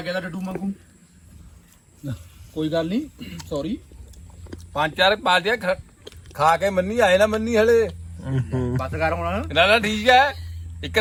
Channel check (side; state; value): both; identical; correlation 1.00